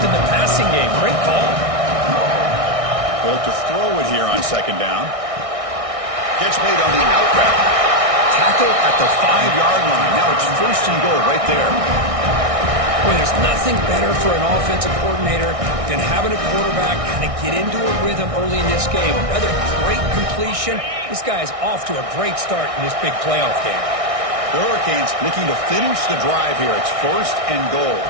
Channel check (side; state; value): left; late; 1.6 ms